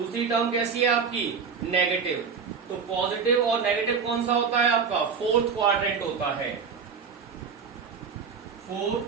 टर्म कैसी है आपकी नेगेटिव। तो पॉजिटिव और नेगेटिव कौन सा होता है आपका फोर्थ क्वाड्रेंट होता है। 4,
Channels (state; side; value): quieter; left; 6.0 dB